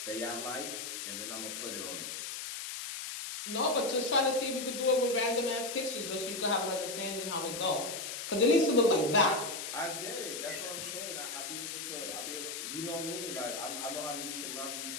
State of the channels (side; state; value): left; noise; hiss, 6 dB below the sound